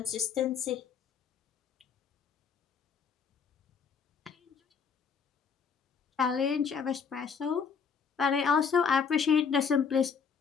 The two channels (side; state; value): right; quieter; 6.2 dB